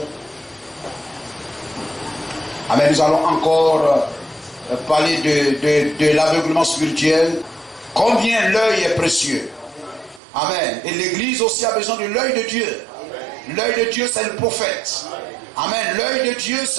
Amen. Nous allons encore parler de l'aveuglement spirituel. Combien l'œil est précieux. Amen. Et l'Église aussi a besoin de l'œil de Dieu. L'œil de Dieu, c'est le prophète. Amen. L'œil de Dieu,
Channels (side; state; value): left; drops out; at 10.2 s